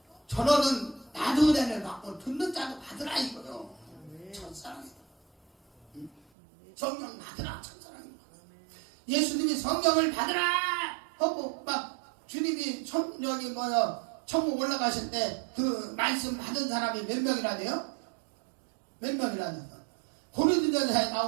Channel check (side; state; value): left; drops out; at 6.2 s